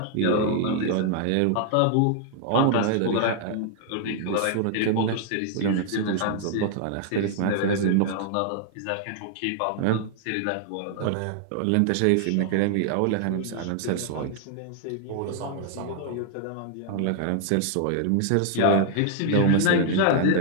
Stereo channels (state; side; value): different; both; correlation -0.01